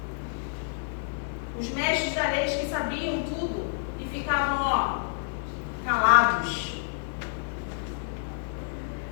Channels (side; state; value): right; silent; digital silence